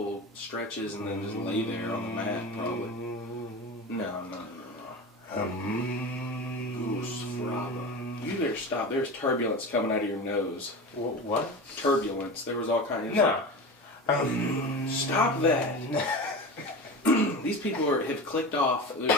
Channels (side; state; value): both; normal; correlation 0.28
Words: stretches and then just lay there on the mat, probably. No. Goose fraba. You better stop. There's turbulence coming out of your nose. What? Turbulence. There was all kinds of... No. Stop that. These people have clicked off. They're